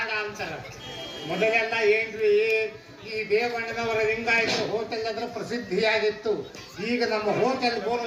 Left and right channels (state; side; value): identical; both; correlation 1.00